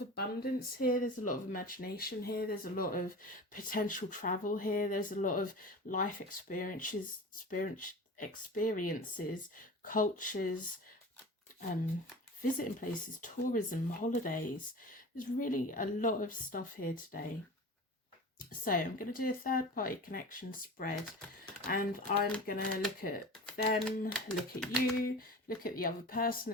abundance here, there's a lot of imagination here, there's a lot of potential travel here, there's a lot of life experiences, cultures, visiting places, tourism, holidays. There's really a lot of stuff here today. So I'm going to do a third party connection spread, and I'm going to look at them, look at you, look at the other person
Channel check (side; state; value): both; normal; correlation 0.35